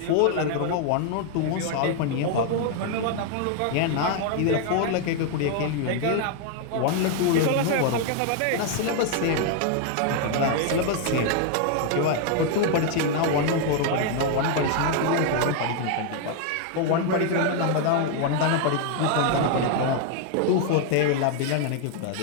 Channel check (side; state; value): both; different; correlation 0.00